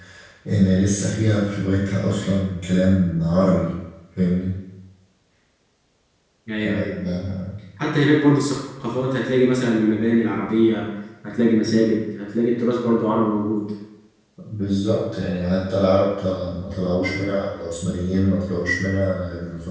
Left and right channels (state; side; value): identical; both; correlation 1.00